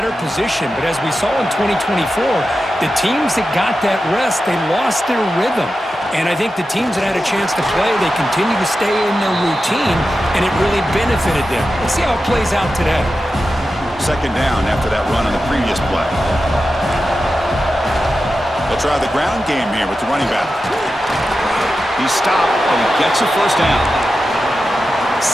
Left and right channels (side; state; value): both; normal; correlation 0.91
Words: position. But as we saw in 2024, the teams that got that rest, they lost their rhythm. And I think the teams that had a chance to play, they continue to stay in their routine, and it really benefited them. Let's see how it plays out today. Second down after that run on the previous play. They'll try the ground game here with the running back. He's stopped, and he gets a first down.